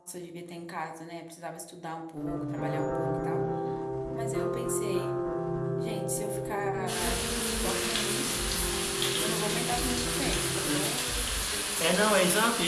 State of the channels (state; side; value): identical; both; correlation 1.00